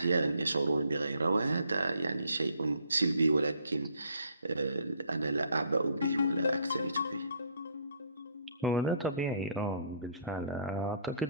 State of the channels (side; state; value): both; inverted; correlation -0.61